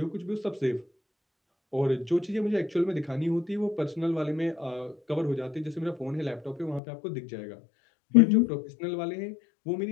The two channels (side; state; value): right; drops out; at 6.8 s